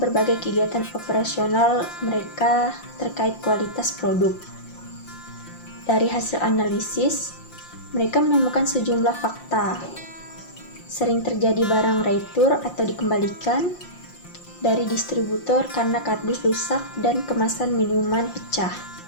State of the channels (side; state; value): right; late; 5.7 ms